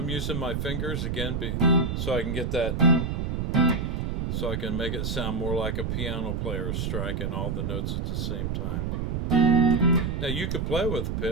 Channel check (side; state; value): right; noise; rumble, 1 dB below the sound